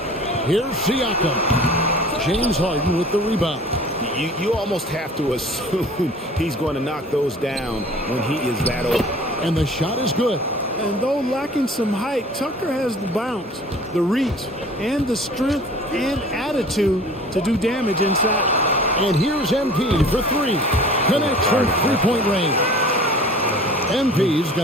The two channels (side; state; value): both; normal; correlation 0.45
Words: Here's Siakam. James Harden with the rebound. You almost have to assume he's going to knock those down when he is that old. And the shot is good. And though lacking some height, Tucker has the bounce, the reach, and the strength and attitude to do damage inside. And here's MP for three. Connects from three-point range. MP's